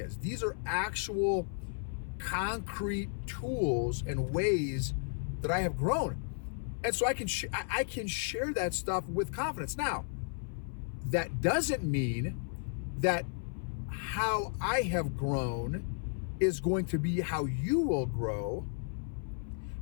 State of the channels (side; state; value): right; silent; 55 dB below the other